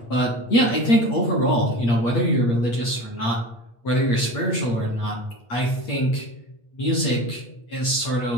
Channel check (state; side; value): late; right; 8.5 ms